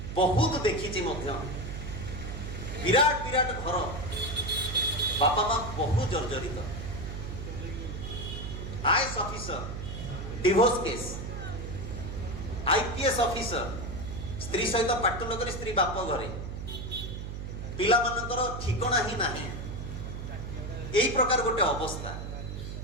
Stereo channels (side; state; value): right; noise; hum, 7 dB below the sound